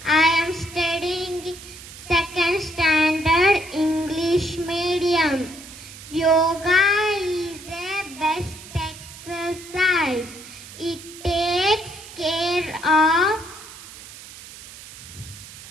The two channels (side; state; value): right; noise; hiss, 16 dB below the sound